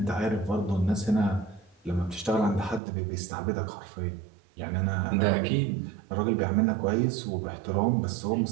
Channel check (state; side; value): drops out; left; at 2.8 s